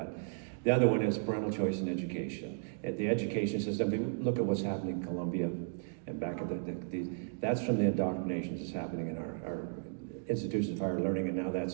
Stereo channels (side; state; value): left; silent; digital silence